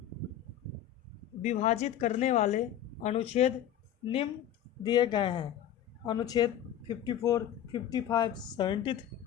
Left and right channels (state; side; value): quieter; right; 10.6 dB